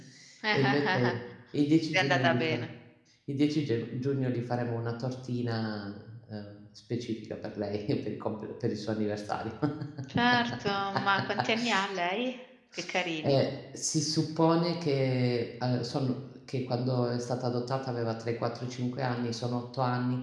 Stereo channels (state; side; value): identical; both; correlation 1.00